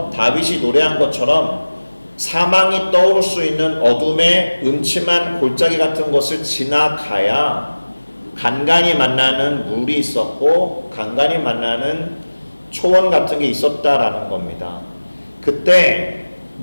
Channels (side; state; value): both; inverted; correlation -1.00